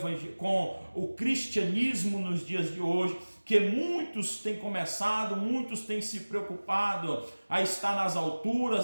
o cristianismo nos dias de hoje, que muitos têm começado, muitos têm se preocupado a estar nas alturas,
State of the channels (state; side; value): inverted; both; correlation -1.00